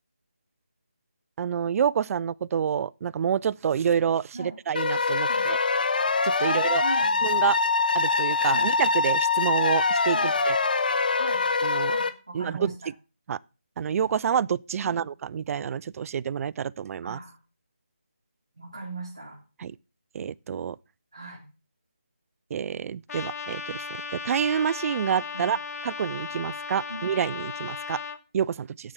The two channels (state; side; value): inverted; both; correlation -0.48